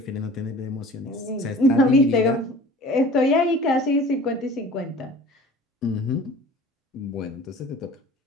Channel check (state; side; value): normal; both; correlation 0.44